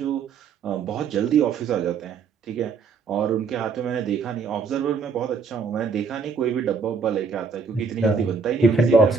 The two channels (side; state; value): left; quieter; 5.2 dB